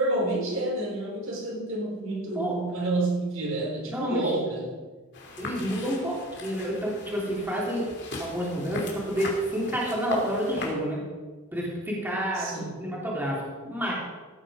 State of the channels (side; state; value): both; normal; correlation 0.40